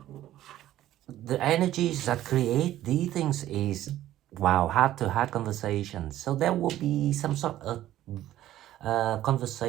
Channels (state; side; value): quieter; left; 13.5 dB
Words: the energies that create these things is, wow, heart-to-heart conversations. So there will be some sort of